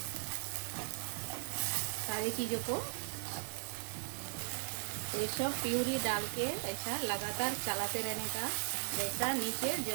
सारी चीज़ों को। तो ये सब प्यूरी डाल के ऐसा लगातार चलाते रहने का, जैसा नीचे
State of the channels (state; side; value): silent; left; digital silence